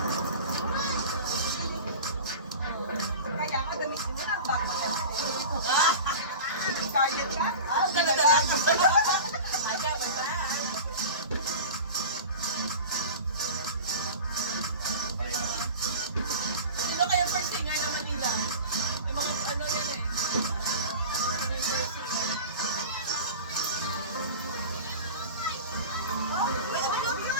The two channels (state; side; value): inverted; both; correlation -0.33